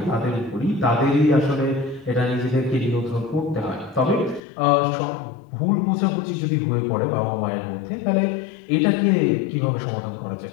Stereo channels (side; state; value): right; drops out; at 4.4 s